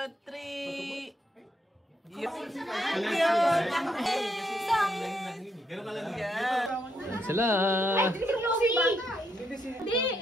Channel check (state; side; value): normal; both; correlation 0.76